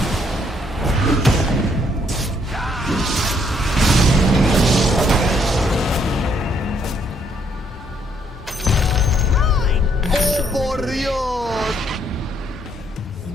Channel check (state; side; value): normal; both; correlation 0.70